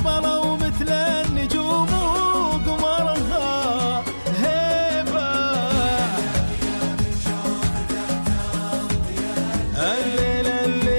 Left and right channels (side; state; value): both; inverted; correlation -1.00